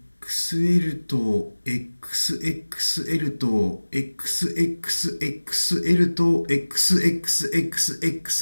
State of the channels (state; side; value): inverted; both; correlation -1.00